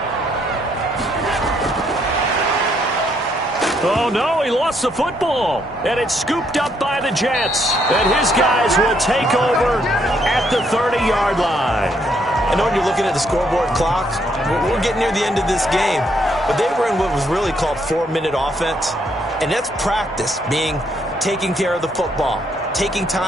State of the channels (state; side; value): normal; both; correlation 0.72